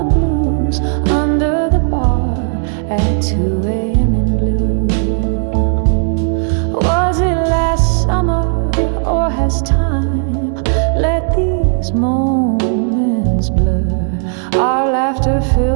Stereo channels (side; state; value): left; silent; 65 dB below the other